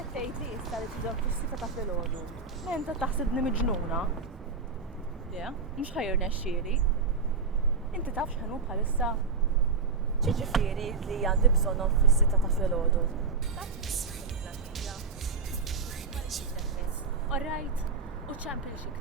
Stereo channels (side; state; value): left; quieter; 4.6 dB